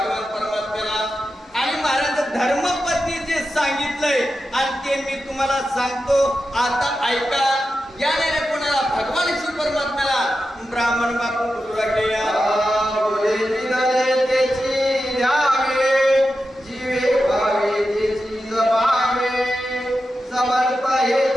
परमात्म्याला. आणि महाराज धर्मपत्नी जे सांगितलंय आणि ते मी तुम्हाला सांगतो आता ऐका. याने कोणाला भगवान शिव परमात्म्याला ब्राह्मण बापू बोलू लागले. जीवे भावे त्याची जपावे समर्थ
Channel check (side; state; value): both; normal; correlation 0.90